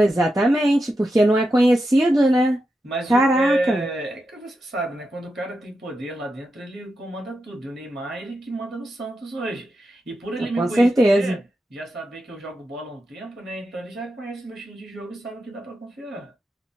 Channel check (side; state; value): both; normal; correlation 0.88